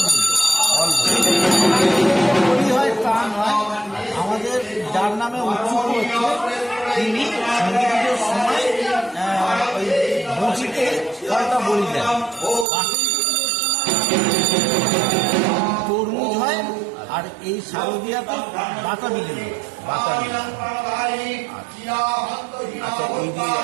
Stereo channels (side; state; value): left; drops out; at 12.7 s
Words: বলি। বলি হয় তা নয়, আমাদের যার নামে উৎসুক হচ্ছে তিনি সন্ধ্যা পুজোর সময় ওই বঁচিতে ফলটা বলি দেন। তরমুজ হয়, আর এই শারদীয়াতে বাতাবি লেবু। আচ্ছা, এই যে